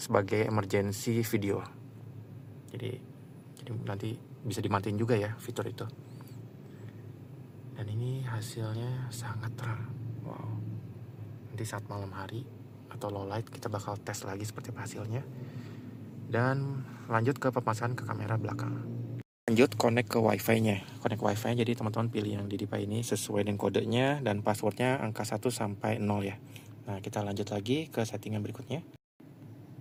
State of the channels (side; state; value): both; identical; correlation 1.00